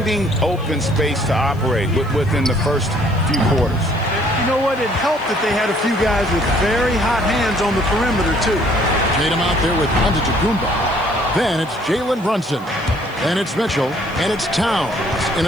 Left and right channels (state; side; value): noise; left; hiss, 27 dB below the sound